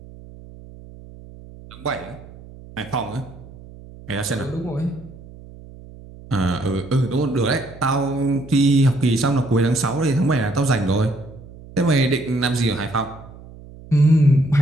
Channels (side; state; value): right; noise; hum, 19 dB below the sound